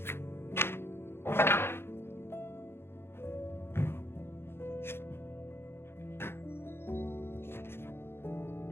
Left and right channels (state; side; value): late; right; 0.11 ms